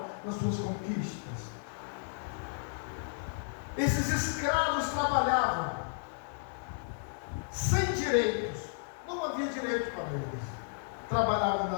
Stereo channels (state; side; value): silent; right; digital silence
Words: nas suas conquistas. Esses escravos trabalhavam sem direitos. Não havia direito para eles. Trabalhavam